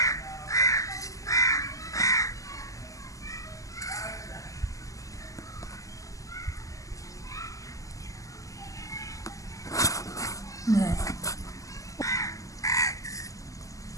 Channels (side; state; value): right; late; 0.16 ms